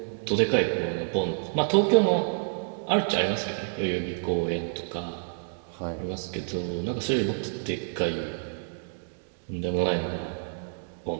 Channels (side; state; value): left; silent; digital silence